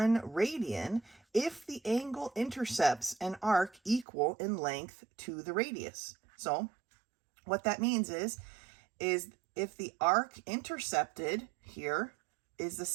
radian if the angle intercepts an arc equal in length to the radius. So what that means is if the arc intercepted here is the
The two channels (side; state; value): left; drops out; at 4.0 s